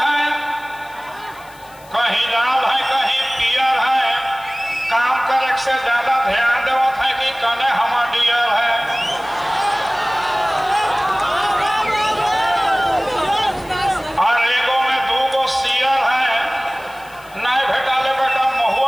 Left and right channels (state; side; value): noise; left; hiss, 25 dB below the sound